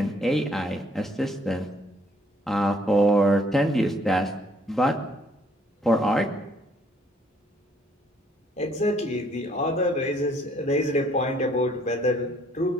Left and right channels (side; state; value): both; normal; correlation 0.64